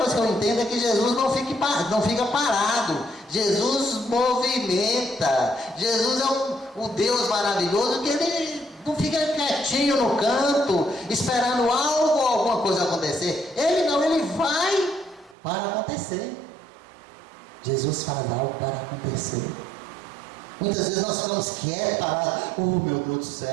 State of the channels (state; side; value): drops out; left; at 15.4 s